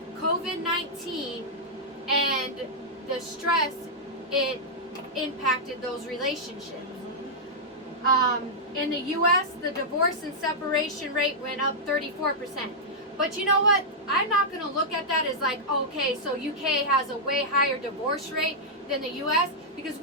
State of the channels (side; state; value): both; normal; correlation -0.08